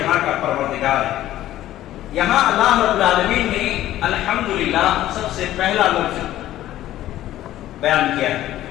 کا پروردگار ہے۔ یہاں اللہ رب العالمین نے الحمدللہ سب سے پہلا لفظ بیان کیا ہے۔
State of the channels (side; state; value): right; quieter; 13.8 dB